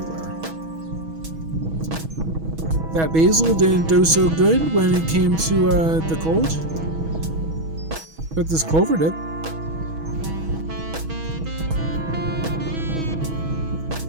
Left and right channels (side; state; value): left; late; 6.2 ms